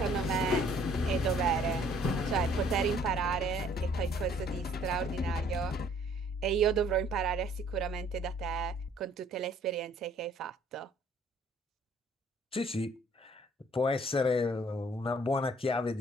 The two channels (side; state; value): both; normal; correlation 0.59